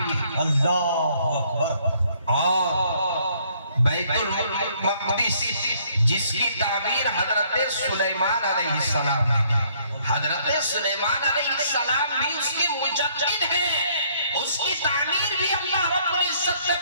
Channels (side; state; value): both; inverted; correlation -0.65